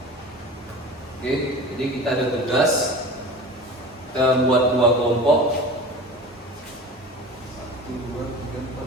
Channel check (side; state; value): both; normal; correlation 0.36